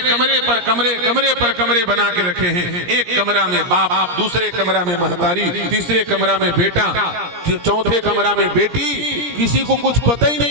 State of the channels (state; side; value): late; left; 17 ms